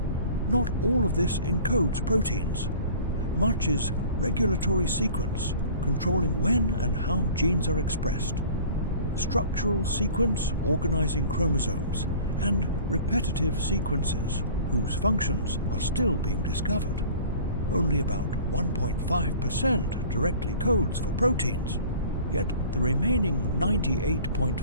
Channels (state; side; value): inverted; both; correlation -0.46